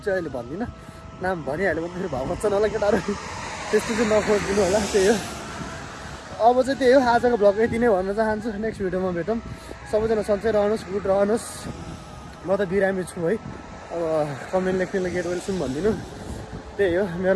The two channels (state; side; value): identical; both; correlation 1.00